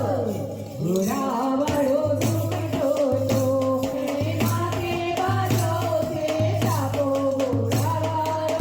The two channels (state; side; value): identical; both; correlation 1.00